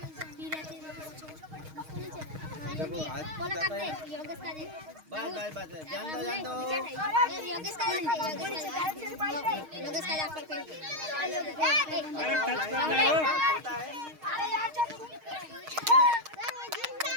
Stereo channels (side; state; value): left; late; 6.4 ms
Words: देखो आज जाता है। बाय बाय बाय, जान दो जान दो।